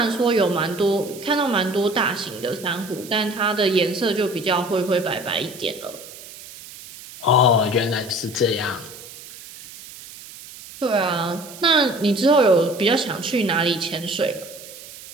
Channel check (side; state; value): right; noise; hiss, 16 dB below the sound